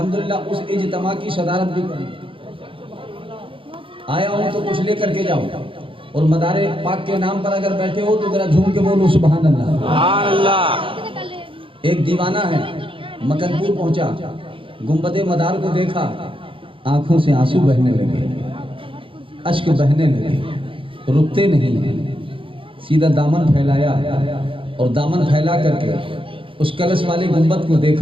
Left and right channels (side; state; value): left; late; 0.25 ms